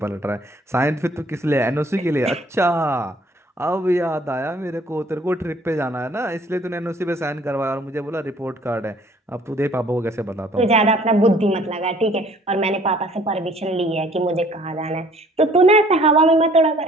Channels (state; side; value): normal; both; correlation 0.57